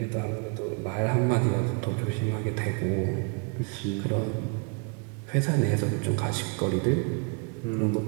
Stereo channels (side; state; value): left; quieter; 34.8 dB